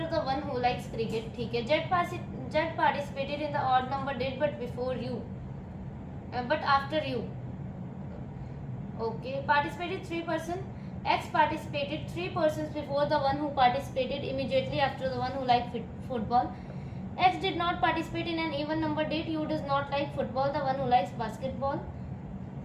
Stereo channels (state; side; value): identical; both; correlation 1.00